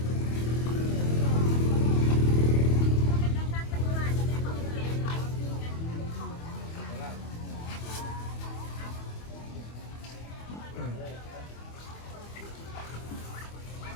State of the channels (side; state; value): right; late; 25 ms